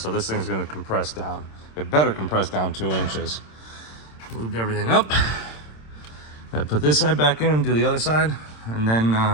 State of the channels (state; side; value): late; right; 26 ms